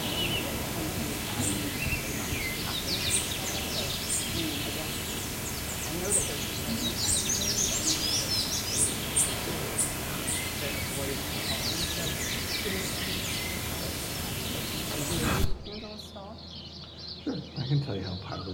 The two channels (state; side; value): identical; both; correlation 1.00